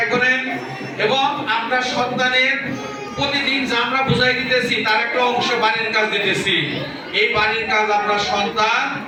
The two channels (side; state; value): both; identical; correlation 1.00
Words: করেন এবং আপনার সন্তানের প্রতিদিন যা আমরা বুঝাই দিতেছি তার একটা অংশ বাড়ির কাজ দিতেছি। এই বাড়ির কাজ আপনার সন্তান